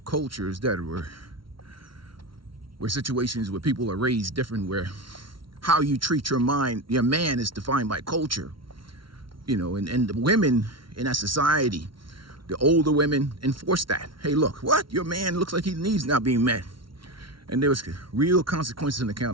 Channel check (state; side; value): late; left; 0.74 ms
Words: that were situations where people are raised different, where how you treat your man is defined by culture. You know, and the women in that society, the older women enforce that. Hey, look, what? Your man looks like his needs not being met. And there was real consequences and